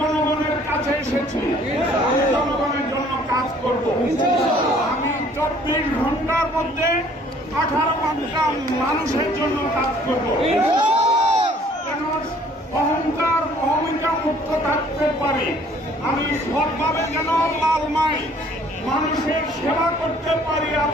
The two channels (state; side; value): normal; both; correlation 0.57